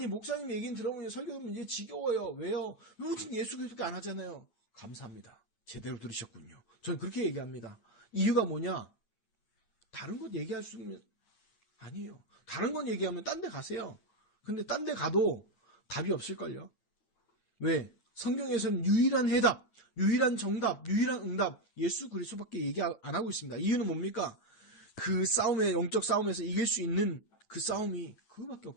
목사님 얘기는 들어보면 설교 들으면 이제 지겨워요. 왜요? 오직 예수 그리스도밖에 안 하잖아요. 감사합니다. 제대로 들으셨군요. 저는 그렇게 얘기합니다. 이유가 뭐냐? 다른 것 얘기할 수 있는 아니에요. 다른 건 얘기하면 딴 데 가세요. 근데 딴 데 가도 답이 없을걸요. 왜? 성경에서는 유일한 해답, 유일한 정답, 유일한 응답, 예수 그리스도밖에 얘기 안 하고 있습니다. 이유는 뭡니까? 그 싸움에, 영적 싸움에서 이길 수 있는 그 싸움이 그거밖에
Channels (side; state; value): right; late; 9.0 ms